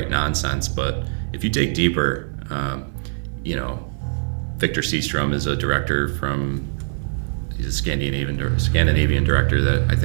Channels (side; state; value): left; silent; 64 dB below the other